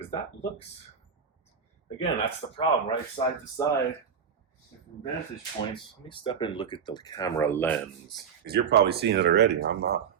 that looks, again, that's the problem, right? Side to side, different vantage points. Let me step in and look at the camera lens because you're probably seeing it already. I'm not.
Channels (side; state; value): left; quieter; 7.2 dB